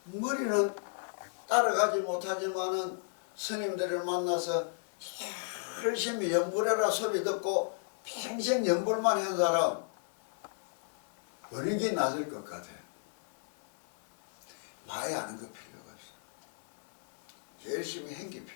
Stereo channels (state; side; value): silent; right; 55 dB below the other